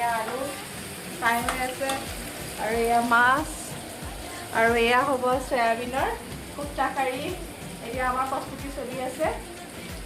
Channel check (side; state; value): both; identical; correlation 1.00